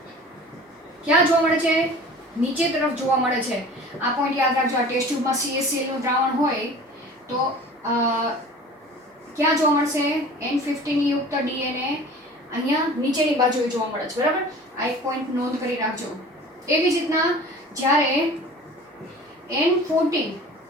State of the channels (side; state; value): both; normal; correlation 0.42